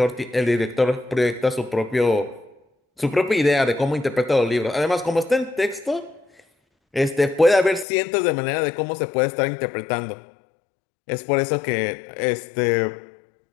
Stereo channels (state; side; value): drops out; right; at 7.9 s